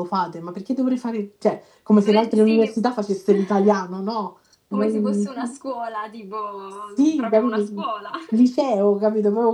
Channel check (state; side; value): identical; both; correlation 1.00